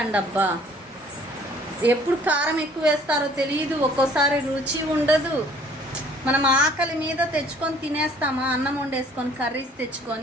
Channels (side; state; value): both; normal; correlation 0.56